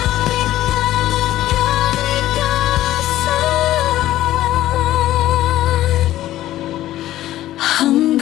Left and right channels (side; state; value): right; quieter; 14.2 dB